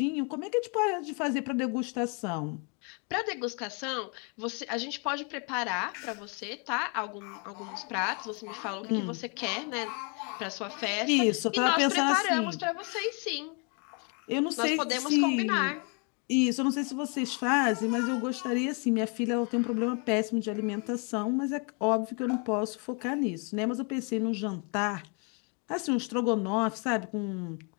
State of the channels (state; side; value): quieter; right; 35.5 dB